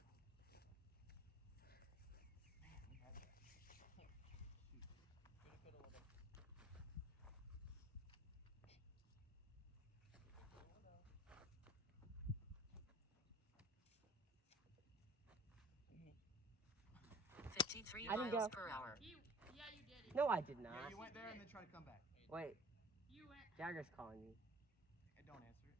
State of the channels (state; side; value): normal; both; correlation 0.48